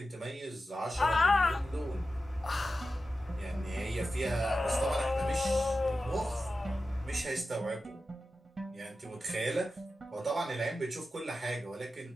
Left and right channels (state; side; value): normal; both; correlation 0.92